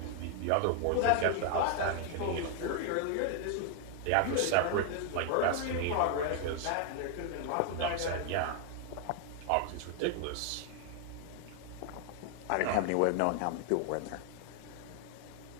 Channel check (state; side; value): different; both; correlation 0.00